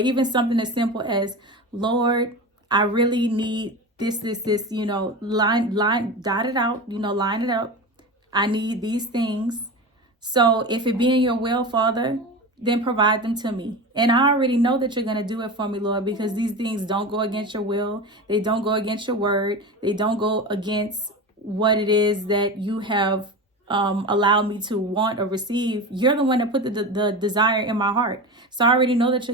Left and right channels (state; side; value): normal; both; correlation 0.26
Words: something as simple as, Lord, I really need this, you know, dot it out, you know, line it up. I need these things. So if it be in your will, Father, then provide them to me. And I already know that you're going to do it for me, Lord, because these things don't go against your will. They don't go against your word. They don't go against what it is that you have allowed me to want or receive. You're the one that put the desire in my heart. So I already know that